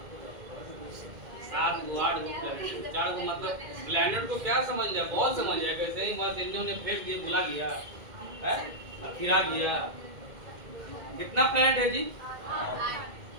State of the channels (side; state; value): left; late; 2.1 ms